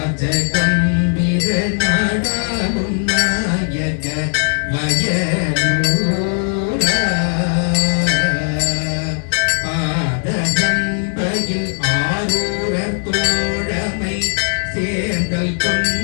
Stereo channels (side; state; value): right; silent; 68 dB below the other